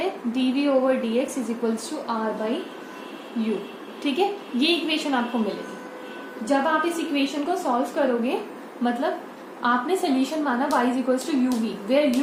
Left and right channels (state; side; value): identical; both; correlation 1.00